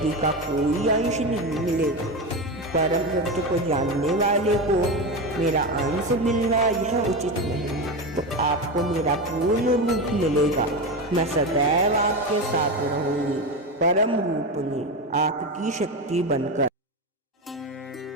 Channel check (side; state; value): both; normal; correlation 0.18